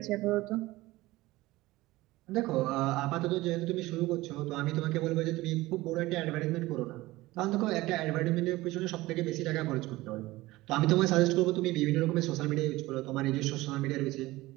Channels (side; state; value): left; quieter; 18.9 dB